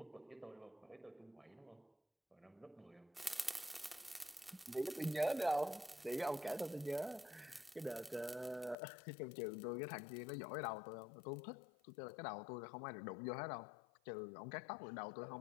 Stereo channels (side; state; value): right; drops out; at 8.8 s